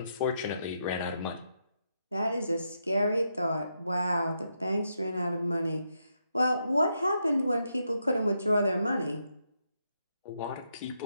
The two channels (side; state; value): both; inverted; correlation -0.81